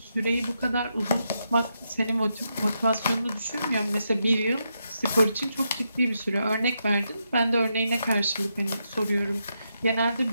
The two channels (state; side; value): inverted; both; correlation -0.82